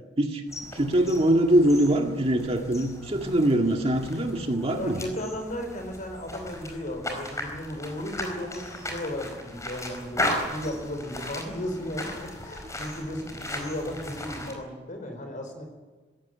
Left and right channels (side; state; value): both; normal; correlation 0.61